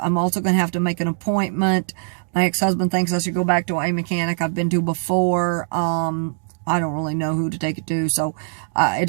I'm also going to have to make an appointment. My ex-husband thinks I should go back to a mechanic I've been to before. I don't really know who to take it to, so it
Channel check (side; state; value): left; silent; digital silence